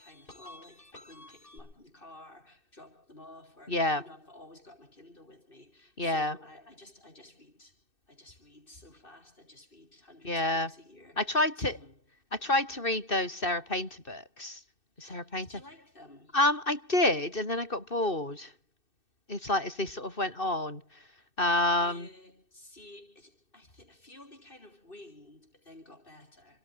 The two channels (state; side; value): late; right; 2.6 ms